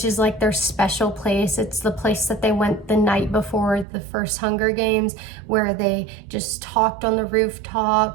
is like their special place. It's the place that they went the night before the first Hunger Games, where they just talked on the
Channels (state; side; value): drops out; left; at 3.9 s